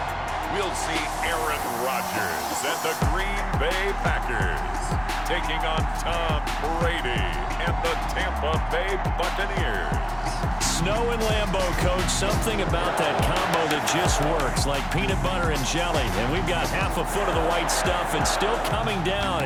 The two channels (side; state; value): both; identical; correlation 1.00